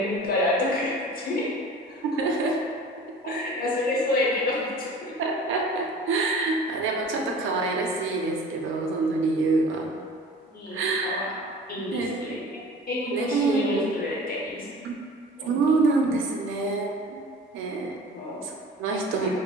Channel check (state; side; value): normal; both; correlation 0.42